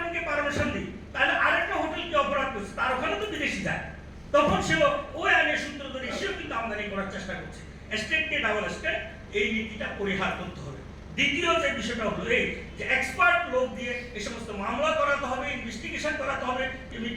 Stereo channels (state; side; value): identical; both; correlation 1.00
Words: পারমিশন দিই, তাহলে আরেকটা হোটেলকে অপরাধ করছে, তার ওখানে তো বিদেশি যায়, তখন সেও ওই আইনের সূত্র ধরে সেও কিন্তু আমদানি করার চেষ্টা করছে। স্টেটকে ডাবল স্টেট, এই নীতিটা পরিহার করতে হবে। দ্বিতীয় যে বিষয়টা হলো এই যে এক্সপার্ট লোক দিয়ে এই সমস্ত মামলা করাতে হবে, ইনভেস্টিগেশন করাতে হবে,